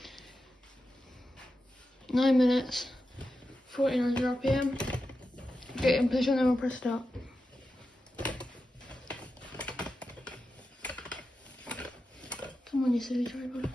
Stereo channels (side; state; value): both; normal; correlation 0.90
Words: nine minutes, 1400 RPM. Get in position and we'll press start. Come on, you silly tripod.